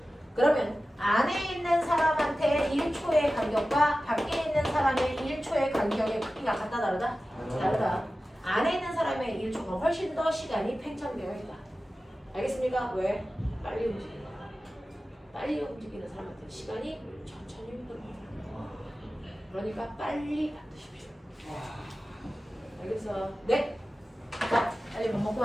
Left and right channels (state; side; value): normal; both; correlation 0.95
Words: 그러면 안에 있는 사람한테 1초의 간격과 밖에 있는 사람의 1초의 간격의 크기가 같다 다르다? 다르다. 안에 있는 사람의 1초가 훨씬 더 시간이 팽창되어 있다. 알겠습니까? 왜? 빨리 움직이는 빨리 움직이는 사람한테 시간이 천천히 흐릅니다. 그러니까 빨리 받으십시오. 알겠어? 네. 자, 빨리 밥 먹고